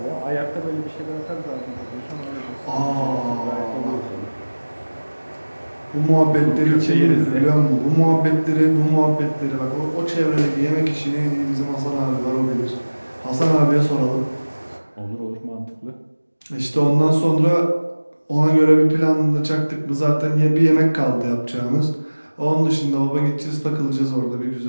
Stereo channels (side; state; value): both; inverted; correlation -1.00